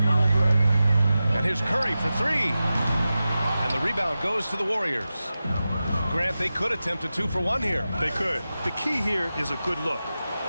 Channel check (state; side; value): inverted; both; correlation -0.94